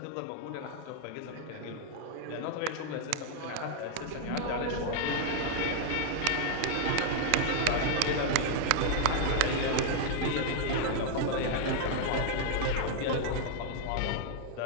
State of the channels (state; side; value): different; both; correlation 0.00